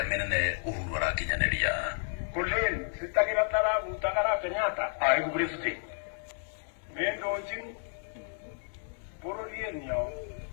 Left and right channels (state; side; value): silent; right; 57 dB below the other